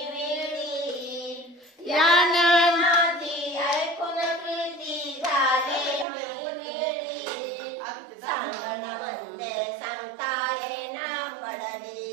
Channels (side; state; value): left; drops out; at 6.1 s